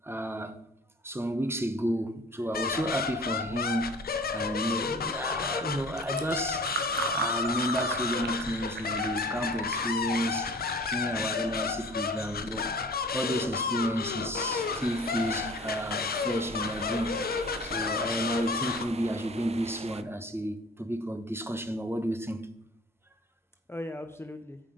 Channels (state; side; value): normal; both; correlation 0.46